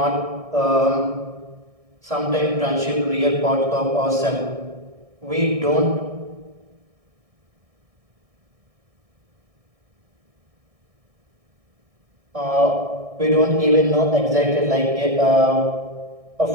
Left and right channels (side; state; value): left; late; 1.6 ms